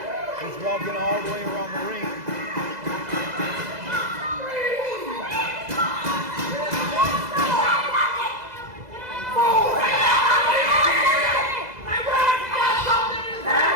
He's walking all the way around the ring.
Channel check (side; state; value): left; late; 2.0 ms